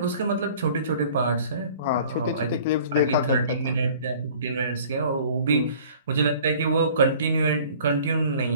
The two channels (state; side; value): inverted; both; correlation -0.49